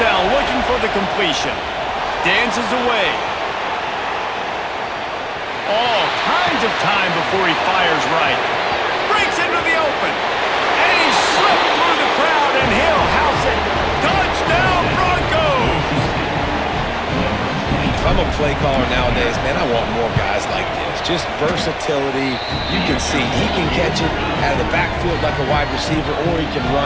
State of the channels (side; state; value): both; identical; correlation 1.00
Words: down, looking for the completion. Dances away. All kinds of time before he fires right. Breaks into the open. And he slipped through the crowd, and he'll house it. Touchdown, Broncos! If I'm a play caller nowadays, man, I want more guys like this. Just versatility. You can see he can catch it out of the backfield like a wide receiver, or he can